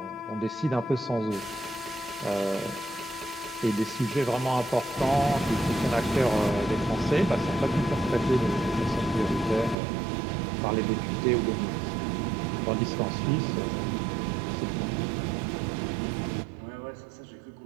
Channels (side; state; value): left; drops out; at 9.8 s